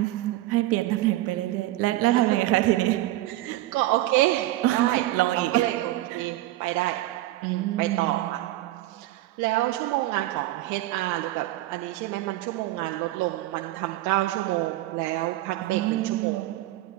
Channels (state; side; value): quieter; left; 16.5 dB